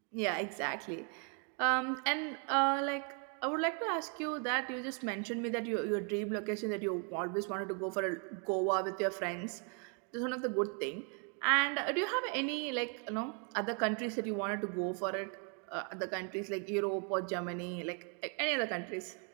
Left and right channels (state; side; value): quieter; left; 39.3 dB